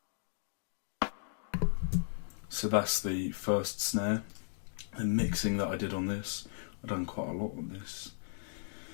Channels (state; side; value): silent; right; digital silence